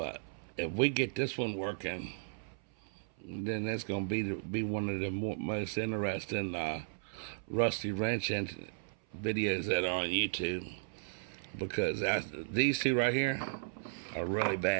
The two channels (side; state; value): left; silent; 54 dB below the other